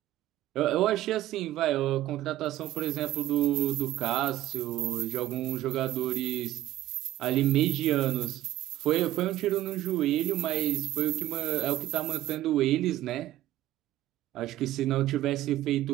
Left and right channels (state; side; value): quieter; left; 14.5 dB